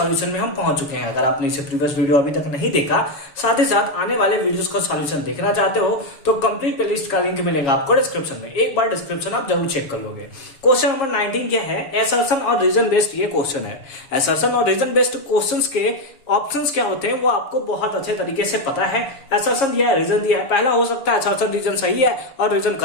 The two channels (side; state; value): right; late; 6.9 ms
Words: में हम पहुंच चुके हैं। अगर आपने इसे प्रीवियस वीडियो अभी तक नहीं देखा, साथ ही साथ आने वाले वीडियोस का सॉल्यूशन देखना चाहते हो तो कंप्लीट प्लेलिस्ट का लिंक मिलेगा आपको डिस्क्रिप्शन में। एक बार डिस्क्रिप्शन आप जरूर चेक कर लोगे। क्वेश्चन नंबर 19 क्या है? असर्शन और रीजन बेस्ड ये क्वेश्चन है। असर्शन और रीजन बेस्ड क्वेश्चंस के ऑप्शंस क्या होते हैं वो आपको बहुत अच्छे तरीके से पता है। असर्शन दिया है, रीजन दिया है। पहला हो सकता है असर्शन रीजन सही है और रीजन